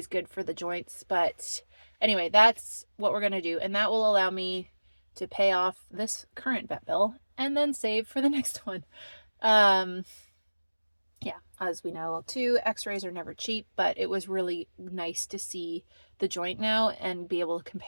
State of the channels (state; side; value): inverted; both; correlation -1.00